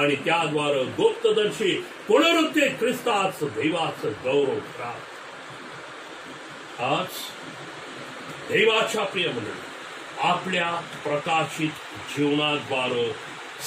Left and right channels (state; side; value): identical; both; correlation 1.00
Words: त्याद्वारे गुप्तदर्शी पुनरुत्थित ख्रिस्ताचं देवाचं गौरव करा. आज देवाच्या प्रिय मंडळी, आपल्या प्रकाशित जीवनाद्वारे